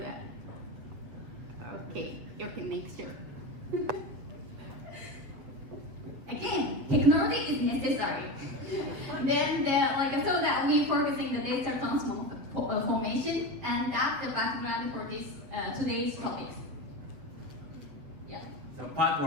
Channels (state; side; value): late; left; 7.9 ms